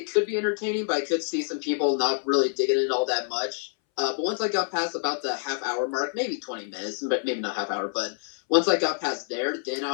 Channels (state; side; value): silent; right; 60 dB below the other